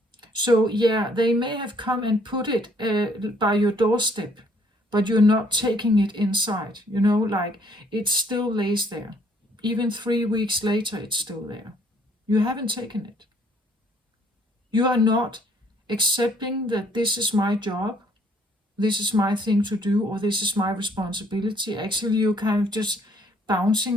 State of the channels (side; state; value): both; normal; correlation 0.63